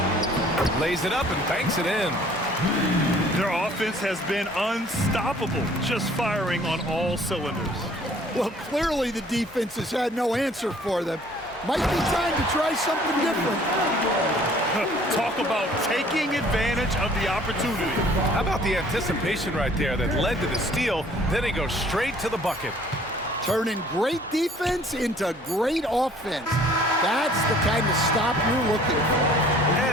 Lays it up and banks it in. Their offense has been unstoppable, just firing on all cylinders. Well, clearly the defense has had no answer for them. Might be time to try something different. Talk about taking advantage of the opportunity. How about the anticipation right there that led to the steal? Then he goes straight to the bucket. Turning great defense into great offense. That's the kind of stop you're looking for.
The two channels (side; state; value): both; normal; correlation 0.55